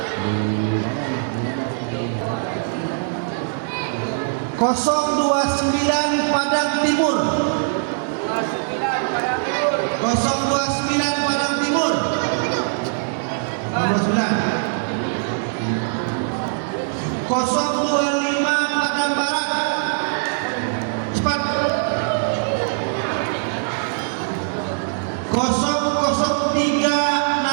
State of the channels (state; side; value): silent; left; digital silence